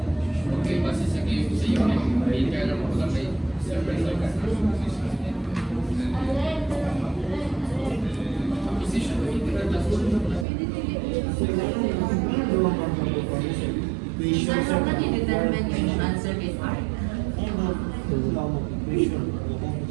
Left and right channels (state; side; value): drops out; left; at 10.5 s